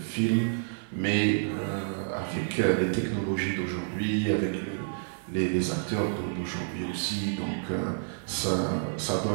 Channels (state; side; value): silent; left; digital silence